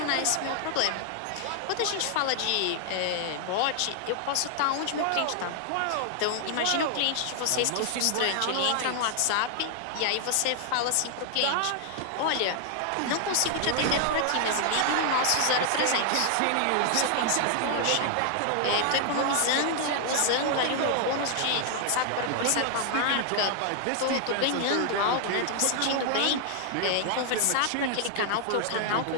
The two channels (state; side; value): different; both; correlation 0.00